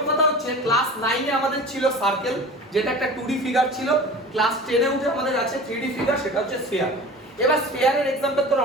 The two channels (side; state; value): both; normal; correlation 0.37